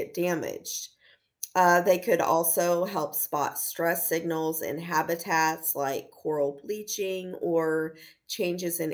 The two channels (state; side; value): identical; both; correlation 1.00